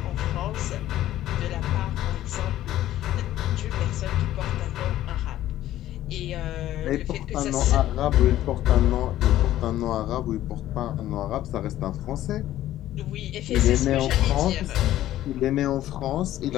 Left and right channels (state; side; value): quieter; right; 13.6 dB